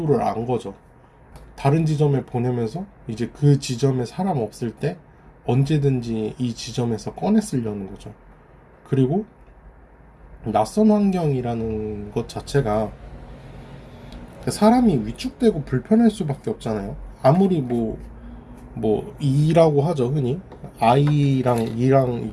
안 거죠. 다른 지점에 보내면서 이제 그 지점에 사람 없을 때 언제든지 이 지점에서 꺼내 쓰려는 거죠. 그리고 낯선 환경이라는 것 자체가 사람이 위축되고 불편할 수밖에 없잖아요. 아무리 뭐 이라고 하죠, 흔히. 아이랑 이랑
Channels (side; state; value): both; identical; correlation 1.00